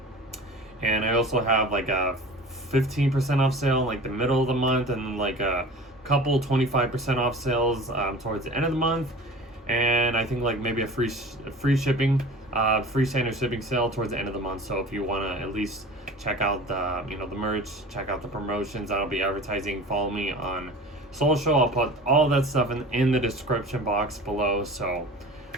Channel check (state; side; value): normal; both; correlation 0.39